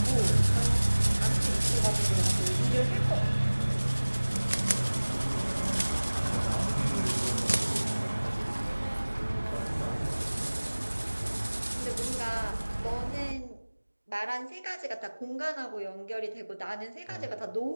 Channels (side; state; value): both; inverted; correlation -1.00